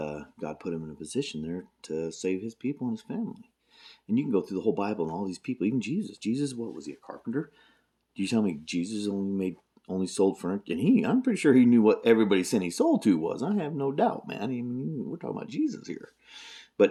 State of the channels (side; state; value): both; identical; correlation 1.00